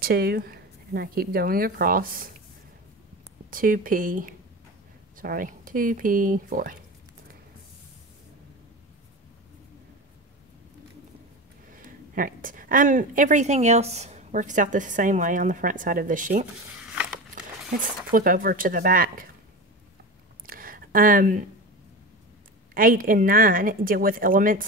and I keep going across 2p4. All right, everything else works out the same way on the front side of the sheet. Let's flip over to the back. 8 and 9 deal with elements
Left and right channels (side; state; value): both; normal; correlation 0.27